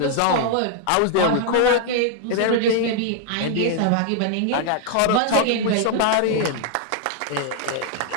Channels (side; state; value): both; different; correlation 0.00